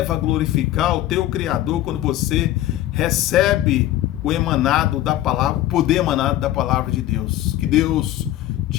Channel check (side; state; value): right; quieter; 14.1 dB